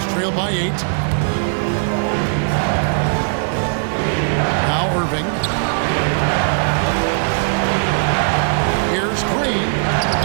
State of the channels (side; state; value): left; silent; digital silence